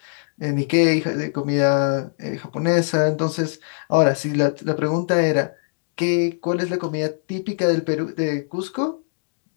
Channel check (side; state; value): right; silent; digital silence